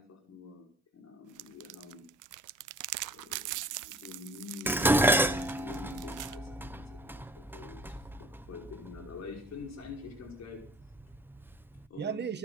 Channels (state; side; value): normal; both; correlation 0.52